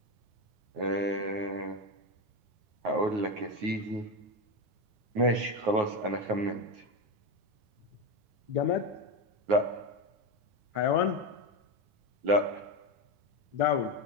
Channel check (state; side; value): late; left; 9.5 ms